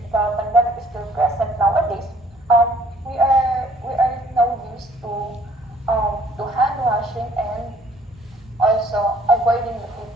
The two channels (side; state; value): both; normal; correlation 0.60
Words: pandemic is still present nowadays, we are now used to hand washing and also avoiding the